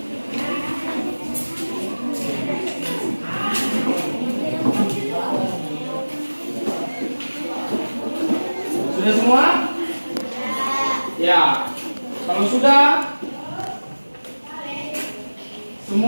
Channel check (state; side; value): inverted; both; correlation -1.00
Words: Sudah semua? Ya. Kalau sudah,